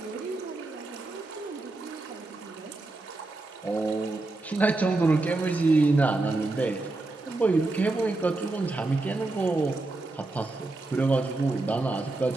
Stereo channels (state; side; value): quieter; left; 3.1 dB